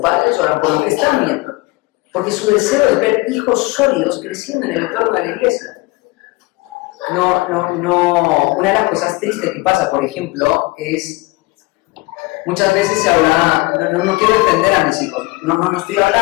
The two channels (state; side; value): quieter; right; 23.0 dB